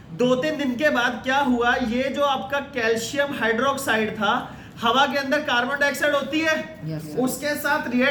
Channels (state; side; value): identical; both; correlation 1.00